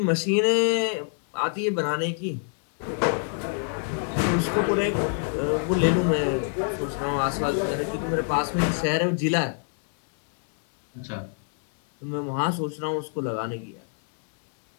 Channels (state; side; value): silent; right; 60 dB below the other